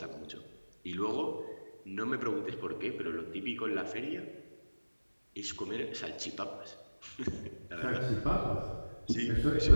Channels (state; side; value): inverted; both; correlation -1.00